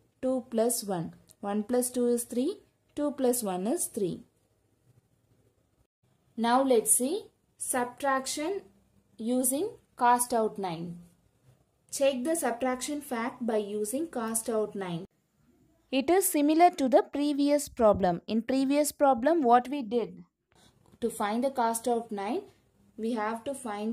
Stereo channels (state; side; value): identical; both; correlation 1.00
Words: 2 plus 1. 1 plus 2 is 3. 2 plus 1 is 3. Now let's see subtraction using cast out 9. Check the subtraction fact by using cast out 9. It is similar to the previous problem. In previous problem, what we did? To find the cast out 9, we have to find